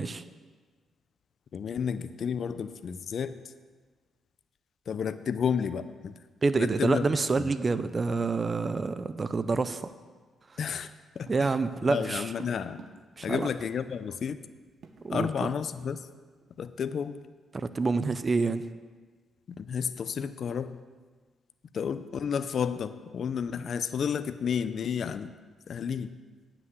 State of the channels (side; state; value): both; normal; correlation 0.81